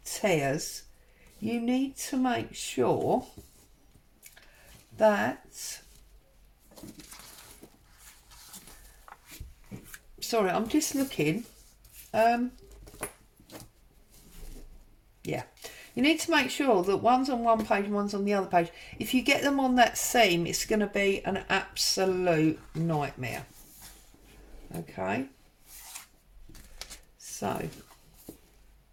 tears, you need to make sure that, sorry, I'm just looking, yeah, you need to make sure that one's on one page and one's on the other page. If you get them on that seam, it's going to be an absolute nightmare. Okay, so,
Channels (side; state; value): both; identical; correlation 1.00